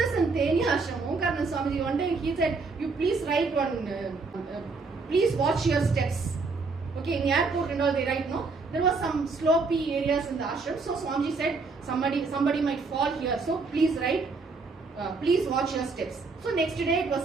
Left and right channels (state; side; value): quieter; left; 4.2 dB